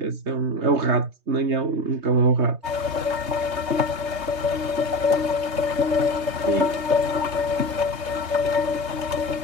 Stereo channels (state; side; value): late; left; 3.2 ms